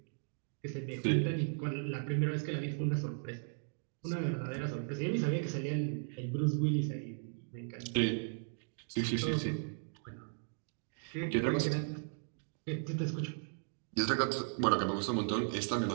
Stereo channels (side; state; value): left; silent; digital silence